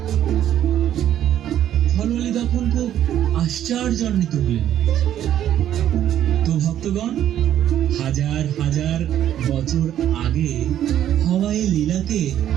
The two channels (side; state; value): left; quieter; 11.1 dB